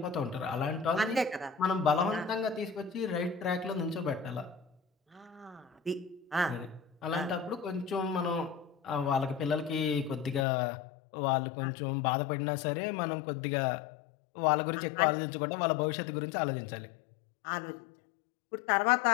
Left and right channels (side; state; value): right; drops out; at 10.5 s